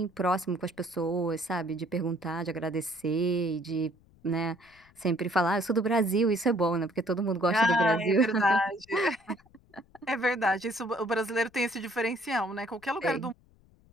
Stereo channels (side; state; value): left; noise; rumble, 30 dB below the sound